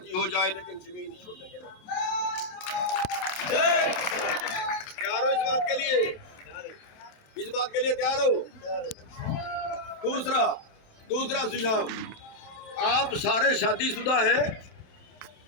हो जाए, लेकिन जमीन नहीं छोड़ेंगे। तैयार हो इस बात के लिए? इस बात के लिए तैयार हो? दूसरा सुझाव, आप सारे शादीशुदा हैं,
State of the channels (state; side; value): late; right; 27 ms